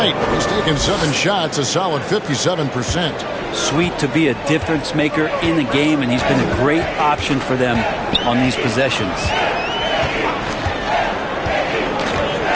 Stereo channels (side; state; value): both; identical; correlation 1.00